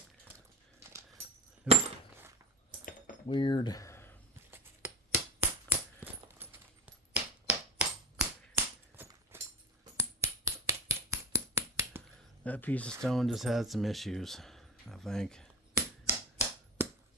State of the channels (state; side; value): normal; both; correlation 0.24